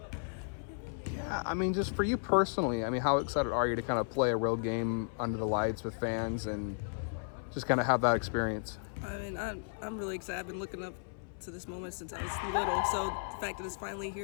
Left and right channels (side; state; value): right; silent; 55 dB below the other